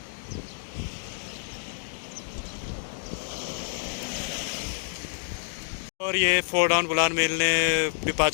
और ये फोर्ड ऑन बुलान मेल ने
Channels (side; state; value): right; silent; digital silence